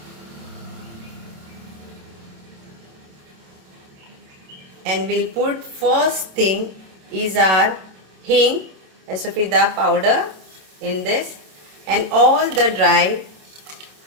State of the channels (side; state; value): left; late; 26 ms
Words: And we'll put, first thing is our hing, asafida powder in this, and all the dry